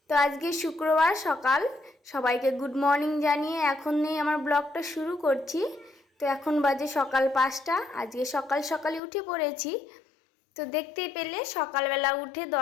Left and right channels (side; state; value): right; drops out; at 9.0 s